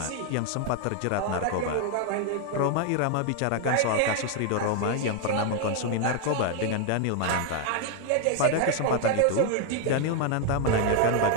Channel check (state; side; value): different; both; correlation 0.00